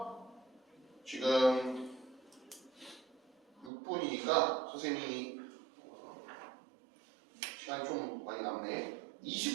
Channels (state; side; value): drops out; left; at 3.7 s